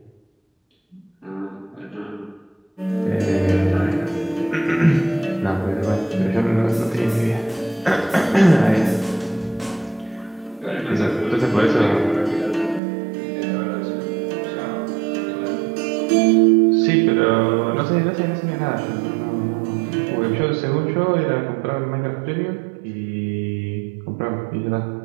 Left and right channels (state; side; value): drops out; left; at 12.8 s